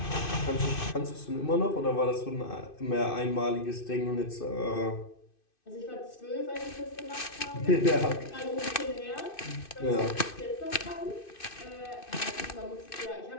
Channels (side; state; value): right; late; 2.6 ms